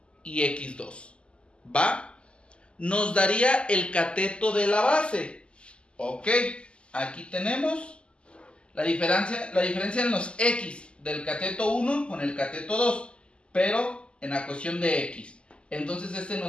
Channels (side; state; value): right; late; 0.053 ms